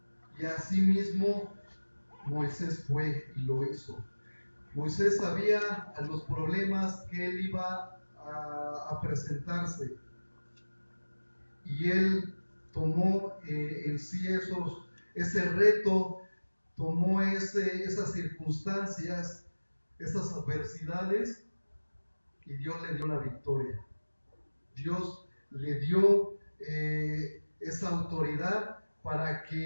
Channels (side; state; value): both; inverted; correlation -1.00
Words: Y así mismo Moisés fue y lo hizo. Moisés sabía a los problemas que él iba a presentarse, y él tomó en sí ese reto, tomó esas circunstancias, esas adversidades, y Dios le dio la victoria. Dios le dio esa autoridad para